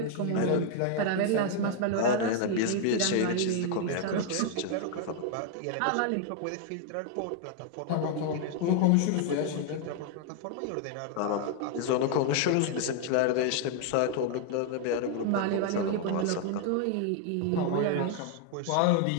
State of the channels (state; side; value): different; both; correlation 0.00